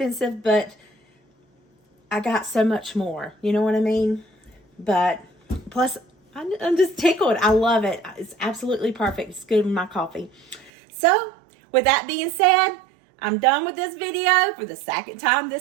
but I got so much more. You know what I mean? But plus, I'm just tickled. I love it. It's absolutely perfect. It's good with my coffee. So, with that being said, I'm done with this video for the second time.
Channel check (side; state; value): left; drops out; at 10.7 s